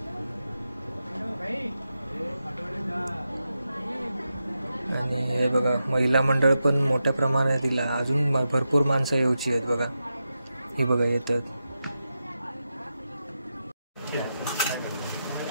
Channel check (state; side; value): inverted; both; correlation -0.88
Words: आणि हे बघा महिला मंडळ पण मोठ्या प्रमाणात दिला. अजून भरपूर माणसं येऊची आहेत बघा. ही बघा येतात.